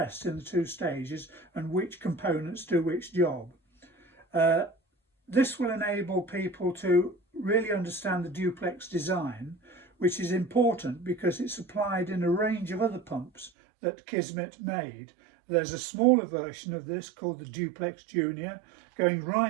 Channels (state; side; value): drops out; left; at 13.5 s